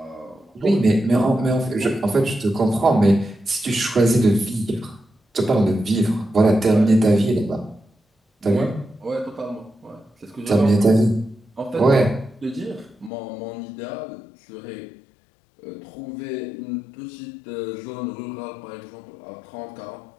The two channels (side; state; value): right; drops out; at 13.1 s